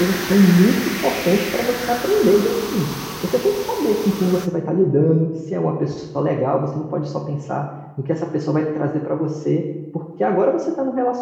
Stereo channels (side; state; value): both; identical; correlation 1.00